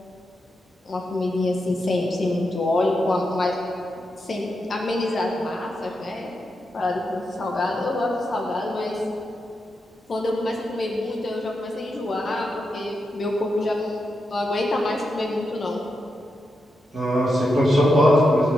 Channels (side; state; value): both; normal; correlation 0.86